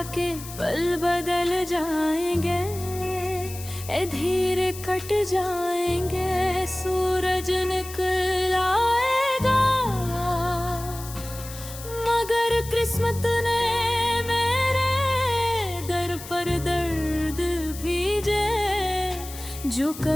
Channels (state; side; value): noise; left; hiss, 13 dB below the sound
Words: कि पल बदल जाएंगे, ए धीरे कट जाएंगे, सूरज निकल आएगा, मगर किस्मत ने मेरे दर पर दर्द भेजे, जो